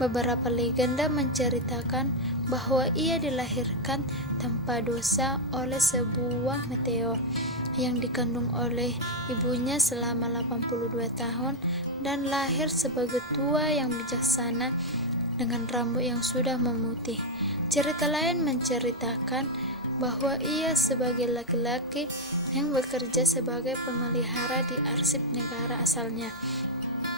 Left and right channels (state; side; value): normal; both; correlation 0.00